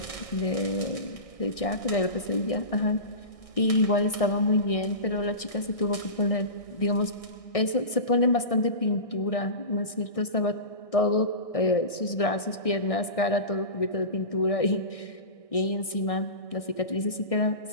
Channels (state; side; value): late; right; 1.6 ms